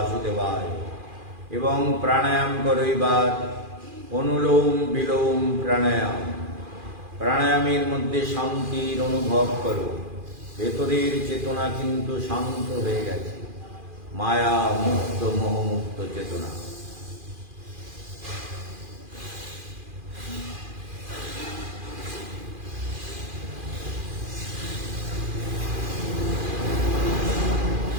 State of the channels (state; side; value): late; left; 2.4 ms